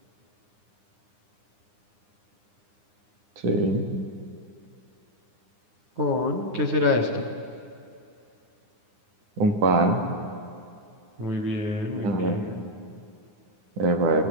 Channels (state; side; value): late; left; 9.8 ms